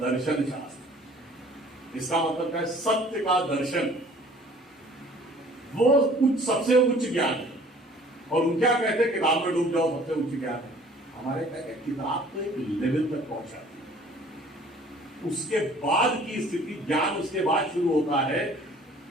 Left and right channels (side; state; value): both; normal; correlation 0.52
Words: दर्शन शास्त्र। इसका मतलब क्या है? सत्य का दर्शन। वो कुछ सबसे उच्च ज्ञान है। और उन क्या कहते हैं? किताब में डूब जाओ, सबसे उच्च ज्ञान है। हमारे कहते हैं किताब तो एक लेवल तक पहुंचाती है, उसके बाद की स्थिति ज्ञान उसके बाद शुरू होता है।